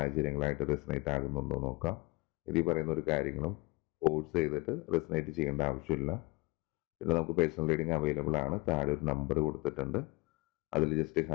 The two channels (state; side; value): quieter; right; 25.3 dB